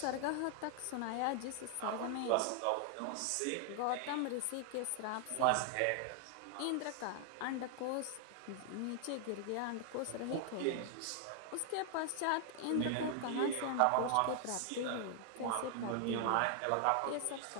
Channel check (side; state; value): both; different; correlation 0.00